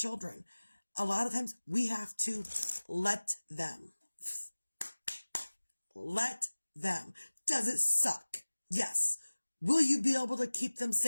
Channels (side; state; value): both; inverted; correlation -1.00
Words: a lot of times we have to let them. Let them. Does it suck? Yes. Will you be able to keep them